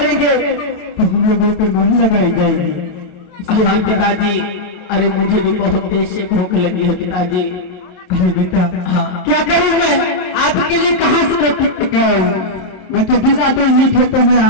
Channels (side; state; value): right; late; 27 ms